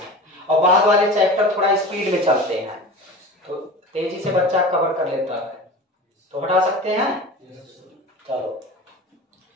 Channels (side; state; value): both; normal; correlation 0.33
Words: और बाद वाले चैप्टर थोड़ा स्पीड में चलते हैं, तो तेजी से बच्चा कवर कर लेता है। तो हटा सकते हैं। चलो